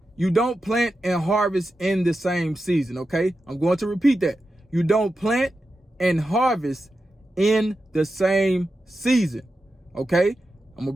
you don't plant and harvest in the same season. Okay, I'm going to repeat that. You don't plant and harvest in the same season. Okay, I'm gonna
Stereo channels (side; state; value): both; normal; correlation 0.90